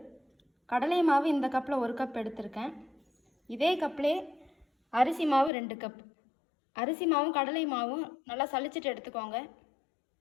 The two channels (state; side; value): drops out; right; at 5.5 s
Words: கடலை மாவு இந்த கப்பில் 1 கப் எடுத்திருக்கேன். இதே கப்லே அரிசி மாவு 2 கப். அரிசி மாவும் கடலை மாவும் நல்லா சலிச்சிட்டு எடுத்துக்கோங்க.